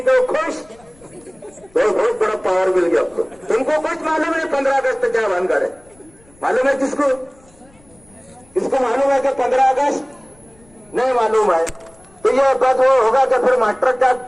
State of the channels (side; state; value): left; noise; rumble, 29 dB below the sound